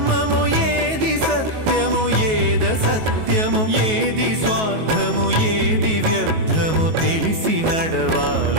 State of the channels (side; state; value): left; late; 19 ms